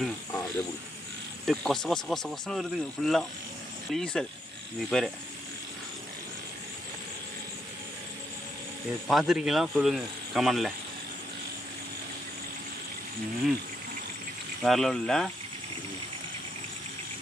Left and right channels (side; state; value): both; normal; correlation 0.77